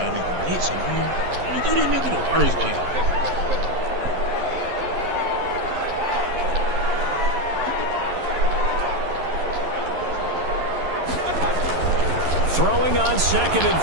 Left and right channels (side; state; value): left; late; 11 ms